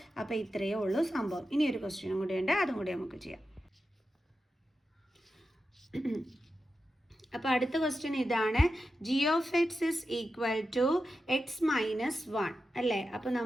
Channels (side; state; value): both; normal; correlation 0.90